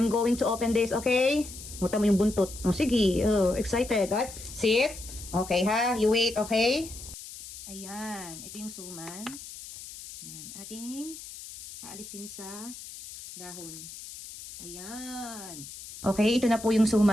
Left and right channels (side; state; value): left; noise; hiss, 13 dB below the sound